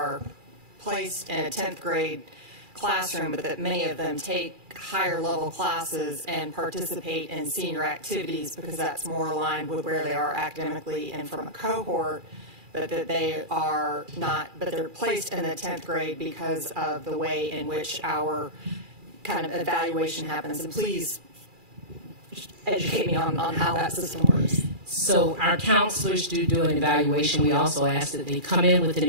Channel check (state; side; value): late; left; 2.4 ms